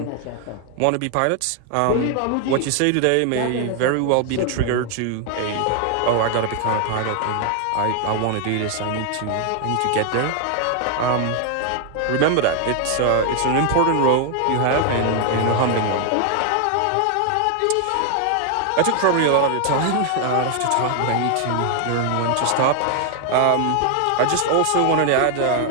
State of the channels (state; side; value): different; both; correlation 0.00